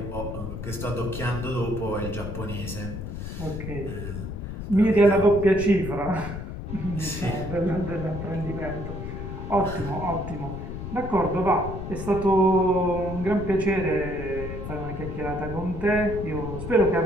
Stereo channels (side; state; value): left; noise; rumble, 7 dB below the sound